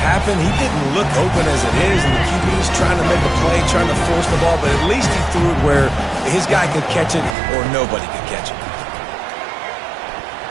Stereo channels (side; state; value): left; drops out; at 7.4 s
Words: He didn't look open as it is, and the QB's trying to make a play, trying to force the ball, but at least he threw it where his guy could catch it or nobody could catch it.